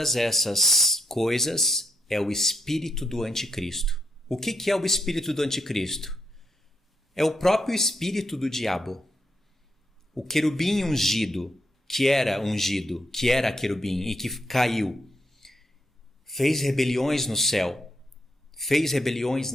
essas coisas é o espírito do anticristo. O que é o espírito do anticristo? É o próprio espírito do diabo. O querubim ungido, que era querubim e que caiu, fez rebeliões no céu, fez rebeliões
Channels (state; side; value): normal; both; correlation 0.79